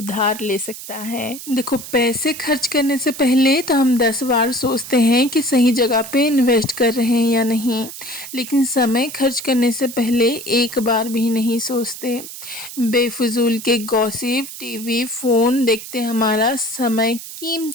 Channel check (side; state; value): right; noise; hiss, 12 dB below the sound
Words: ले सकता है। देखो, पैसे खर्च करने से पहले तो हम 10 बार सोचते हैं कि सही जगह पे इन्वेस्ट कर रहे हैं या नहीं, लेकिन समय खर्च करने से पहले एक बार भी नहीं सोचते। बेफिजूल के गॉसिप, टीवी, फ़ोन देखते हमारा समय,